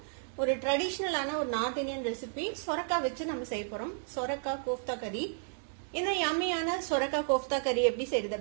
ஒரு ட்ரெடிஷனலான ஒரு நார்த் இந்தியன் ரெசிபி சொரக்காய் வச்சு நம்ம செய்ய போறோம். சொரக்காய் கோஃப்தா கறி. இந்த யம்மியான சொரக்காய் கோஃப்தா கறி எப்படி செய்யறது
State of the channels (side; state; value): left; silent; digital silence